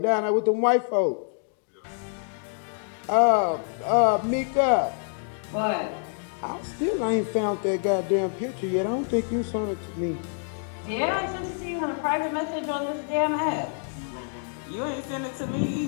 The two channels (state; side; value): silent; right; 60 dB below the other